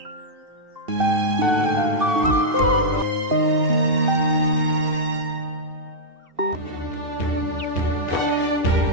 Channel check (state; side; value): late; left; 2.7 ms